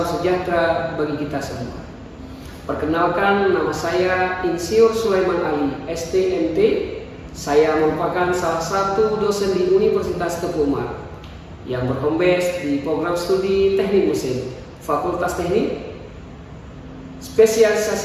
sejahtera bagi kita semua. Perkenalkan, nama saya Insinyur Sulaiman Ali, STMT. Saya merupakan salah satu dosen di Universitas Teguh Umar yang berhome base di program studi Teknik Mesin, Fakultas Teknik.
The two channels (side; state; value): both; identical; correlation 1.00